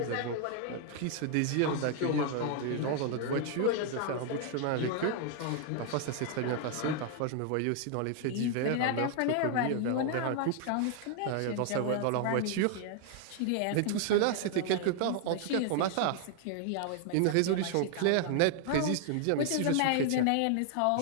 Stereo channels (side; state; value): both; different; correlation 0.00